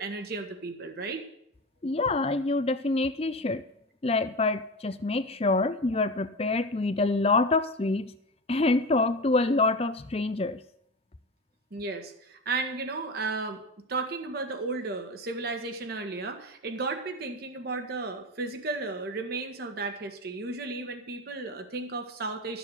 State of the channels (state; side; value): normal; both; correlation 0.25